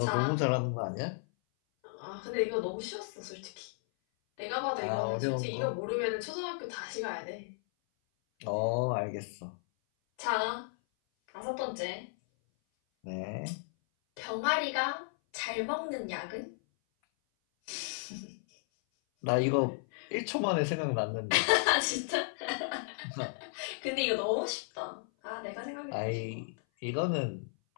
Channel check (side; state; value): right; silent; 55 dB below the other